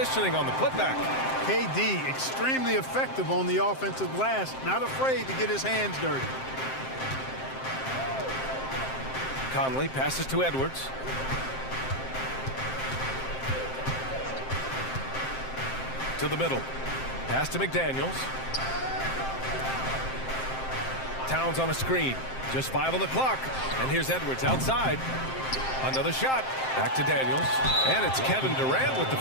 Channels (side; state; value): right; late; 7.6 ms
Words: on the putback. KD, extremely effective on the offensive glass. Not afraid to get his hands dirty. Conley passes to Edwards. To the middle. Pass to McDaniels. Towns on a screen. Just 5 on the clock. And here's Edwards outside. Another shot. Back to Daniels. And it's Kevin Durant with the